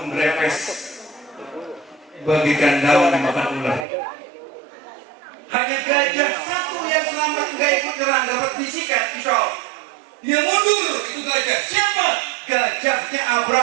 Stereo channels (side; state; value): left; drops out; at 3.9 s